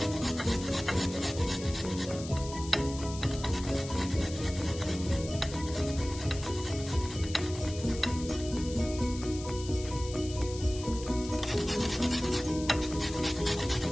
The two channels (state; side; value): noise; left; hiss, 13 dB below the sound